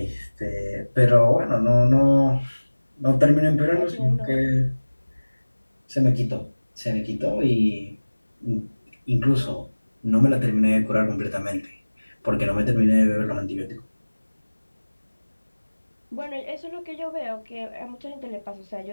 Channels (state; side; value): inverted; both; correlation -1.00